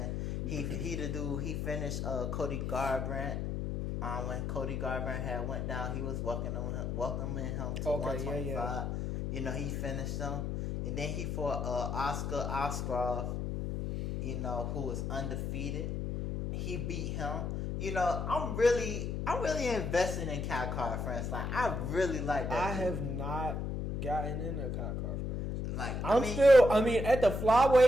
He the dude, he finished Cody Garbrandt. When Cody Garbrandt had went down, he was welcoming him to 125. Yeah. You know, he finished him. And then he fought Oscar Oskarov, you know, who was undefeated. He beat him. You know, I'm really invested in Khamzat France. Like, I really like that. I have not gotten into Khamzat France. Like, I mean, at the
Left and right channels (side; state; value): left; noise; hum, 2 dB below the sound